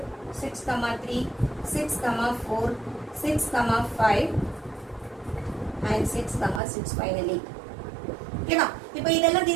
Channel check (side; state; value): left; drops out; at 6.6 s